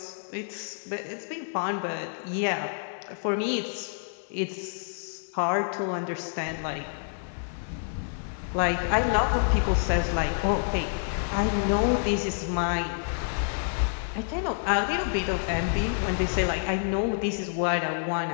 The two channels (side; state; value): right; silent; 59 dB below the other